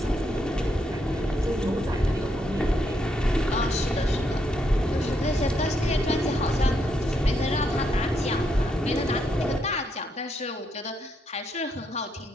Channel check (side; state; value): both; normal; correlation 0.78